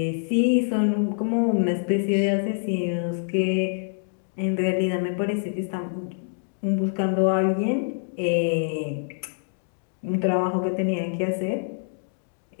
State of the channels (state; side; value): silent; right; digital silence